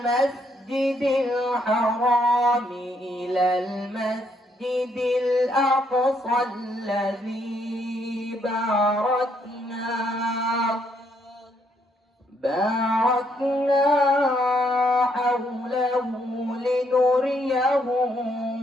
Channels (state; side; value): normal; both; correlation 0.72